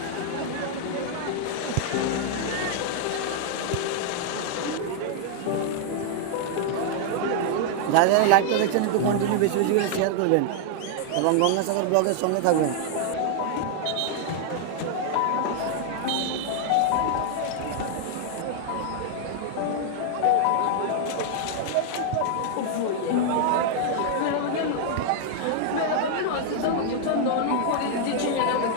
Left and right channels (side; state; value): both; different; correlation 0.00